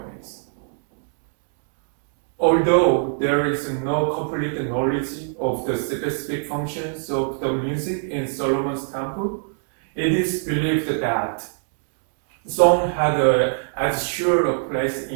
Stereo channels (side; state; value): left; silent; digital silence